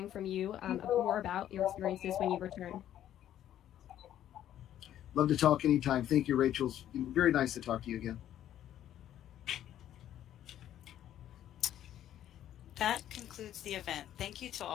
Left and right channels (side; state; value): right; quieter; 11.5 dB